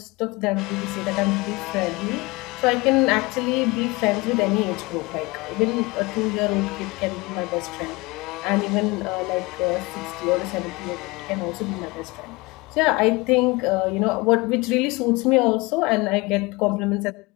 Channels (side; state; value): right; quieter; 24.2 dB